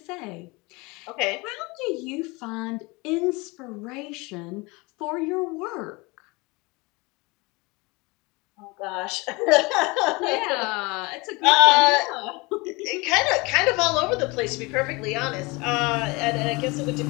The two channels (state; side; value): quieter; right; 25.5 dB